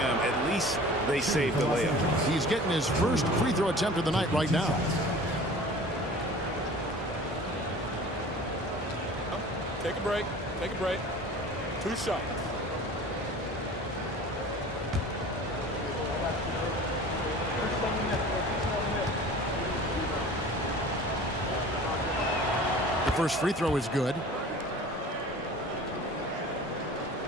at least they saved the layup. He's getting his first free throw attempt of the night right now. Take a break. Take a break. 2 shots. The first free throw is good.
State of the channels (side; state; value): both; normal; correlation 0.42